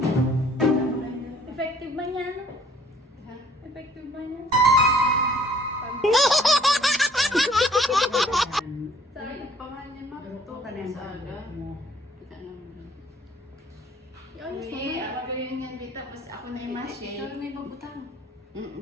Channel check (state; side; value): normal; both; correlation 0.58